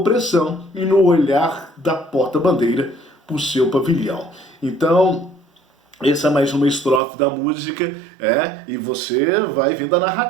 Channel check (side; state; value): left; drops out; at 7.0 s